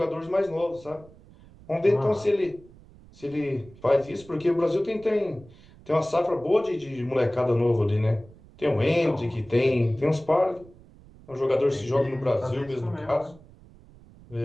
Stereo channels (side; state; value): right; noise; rumble, 23 dB below the sound